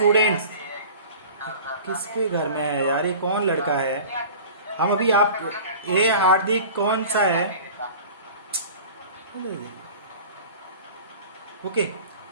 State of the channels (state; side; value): inverted; both; correlation -0.40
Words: किसके घर में है यार, ये कौन लड़का है? हम अभी आप ए हार्दिक कौन सा है? ओके,